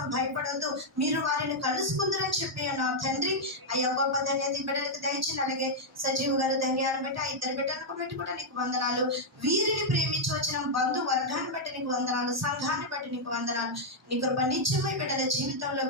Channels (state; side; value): normal; both; correlation -0.04